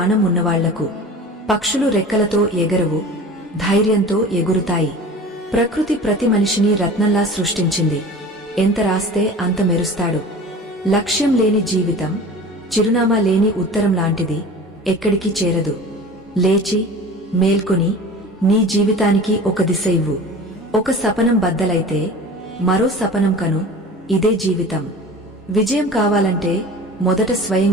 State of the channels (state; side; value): normal; both; correlation 0.38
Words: ఉన్నవాళ్లకు. పక్షులు రెక్కలతో ఎగరవు, ధైర్యంతో ఎగురుతాయి. ప్రకృతి ప్రతి మనిషిని రత్నంలా సృష్టించింది. ఎంత రాస్తే అంత మెరుస్తాడు. లక్ష్యం లేని జీవితం చిరునామా లేని ఉత్తరం లాంటిది, ఎక్కడికి చేరదు. లేచి మేల్కొని నీ జీవితానికి ఒక దిశ ఇవ్వు. ఒక సపనం బద్దలైతే మరో సపనం కను, ఇదే జీవితం. విజయం కావాలంటే మొదట